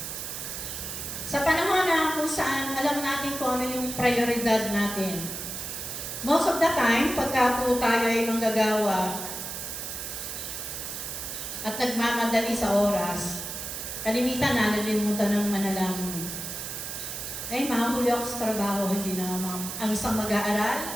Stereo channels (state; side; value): noise; right; hiss, 6 dB below the sound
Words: Sa panahon na kung saan alam natin kung ano yung prioridad natin, most of the time, pagka po tayo ay manggagawa at nagmamadali sa oras, kalimitan na nalimutan ng manalangin. Ay, mahuli ako sa trabaho, hindi na ang isang